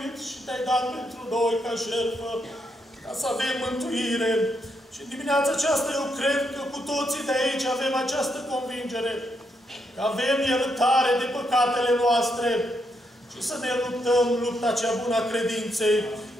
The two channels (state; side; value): normal; both; correlation 0.79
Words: și te-ai dat pentru noi ca jertfă, ca să avem mântuire. Și în dimineața aceasta eu cred că cu toții de aici avem această convingere, că avem iertare de păcatele noastre și să ne luptăm lupta cea bună a credinței,